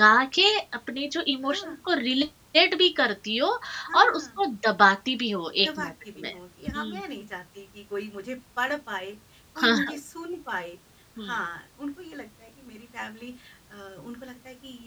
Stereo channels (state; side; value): identical; both; correlation 1.00